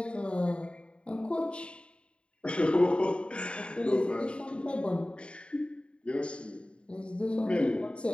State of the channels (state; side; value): late; right; 0.056 ms